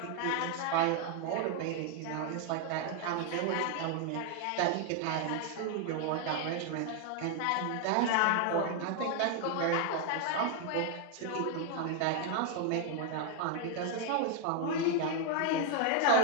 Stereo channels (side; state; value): both; different; correlation 0.01